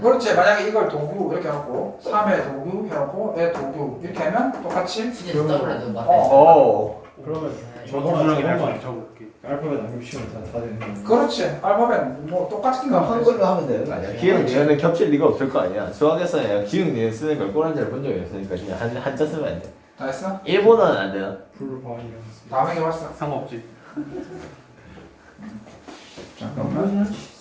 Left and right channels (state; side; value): identical; both; correlation 1.00